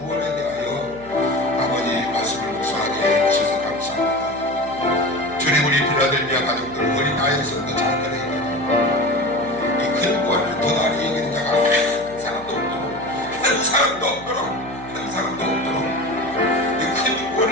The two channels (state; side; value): noise; right; hum, 19 dB below the sound